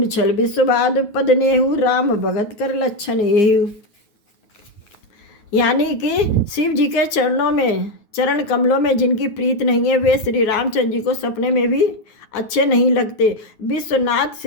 छल विश्ववाद पद नेहु राम भगत कर लक्षण एहु। यानी कि शिव जी के चरण कमलों में जिनकी प्रीत नहीं है वे श्री रामचंद्र जी को सपने में भी अच्छे नहीं लगते। विश्वनाथ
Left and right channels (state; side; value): late; right; 9.4 ms